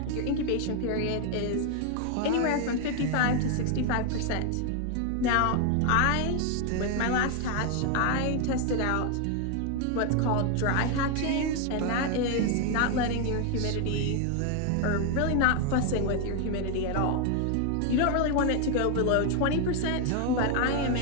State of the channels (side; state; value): both; different; correlation 0.01